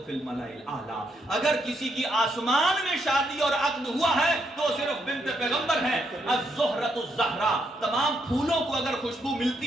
فی الملأ الاعلی. اگر کسی کی آسمان میں شادی اور عقد ہوا ہے تو صرف بنت پیغمبر ہیں. الزہرۃ الزہرا، تمام پھولوں کو اگر خوشبو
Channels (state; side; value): normal; both; correlation 0.77